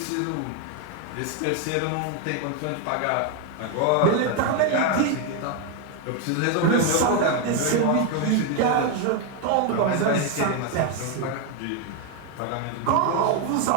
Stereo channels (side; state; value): both; different; correlation 0.01